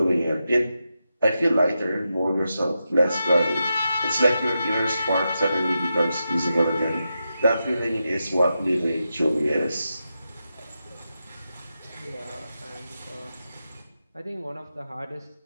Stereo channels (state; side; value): inverted; both; correlation -0.88